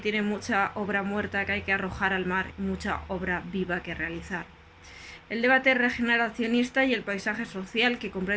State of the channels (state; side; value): identical; both; correlation 1.00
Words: tiene mucha obra muerta que hay que arrojar al mar y mucha obra viva que realizar. El debate regeneracionista y el paisaje social que